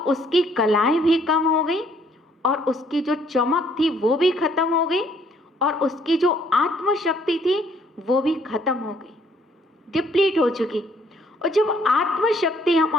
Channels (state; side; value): normal; both; correlation 0.64